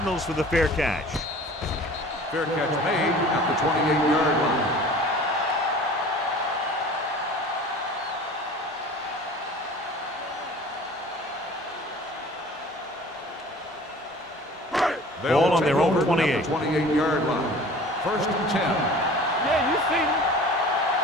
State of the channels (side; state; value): both; normal; correlation 0.44